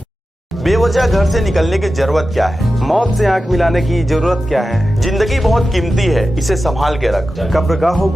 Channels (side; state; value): both; normal; correlation 0.93